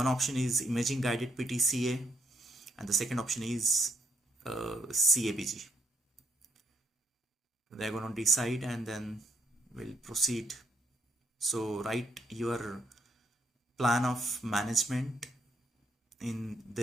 option is imaging guided PTCA, and the second option is CABG. they're going to decide and then we'll proceed. So write your plan of management in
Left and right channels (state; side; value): normal; both; correlation 0.71